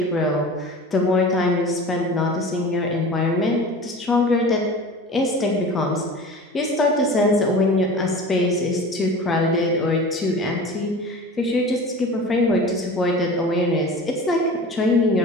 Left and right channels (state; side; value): normal; both; correlation 0.37